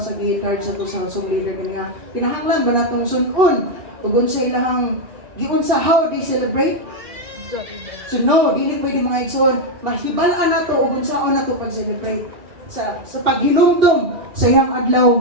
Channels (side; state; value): left; late; 2.4 ms